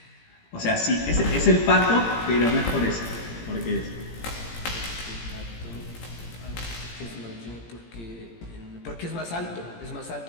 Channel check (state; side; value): late; right; 17 ms